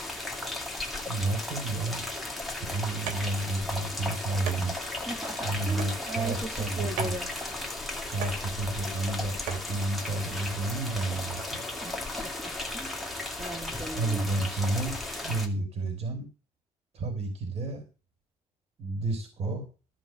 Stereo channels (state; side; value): normal; both; correlation 0.61